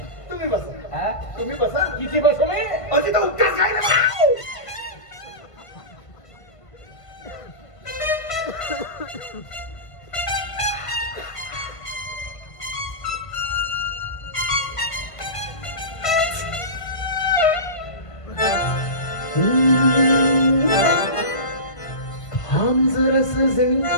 तुम्ही बसा हा? तुम्ही बसा किती बसू मी? अति तर उत्तर काय ना हम जरा सजनी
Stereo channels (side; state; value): right; late; 1.5 ms